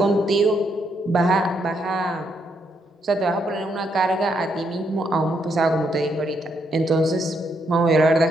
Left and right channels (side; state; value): both; normal; correlation 0.76